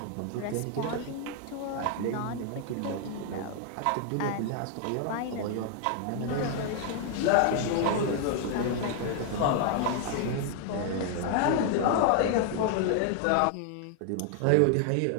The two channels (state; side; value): different; both; correlation 0.00